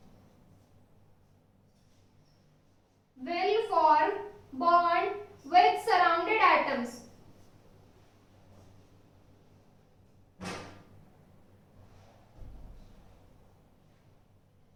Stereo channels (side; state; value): both; identical; correlation 1.00